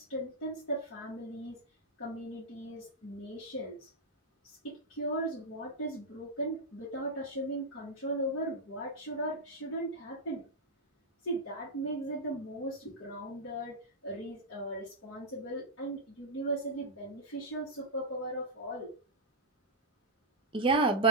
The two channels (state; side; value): normal; both; correlation -0.07